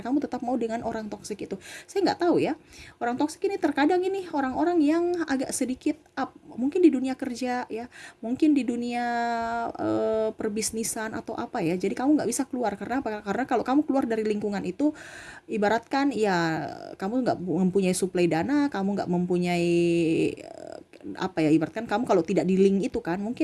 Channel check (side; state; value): both; identical; correlation 1.00